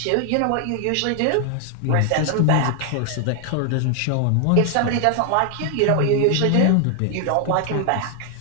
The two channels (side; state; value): both; different; correlation 0.00